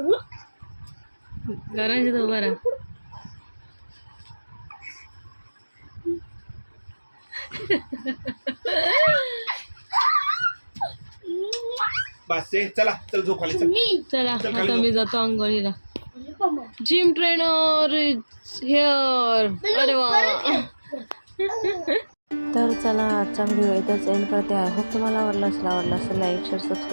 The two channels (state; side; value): inverted; both; correlation -1.00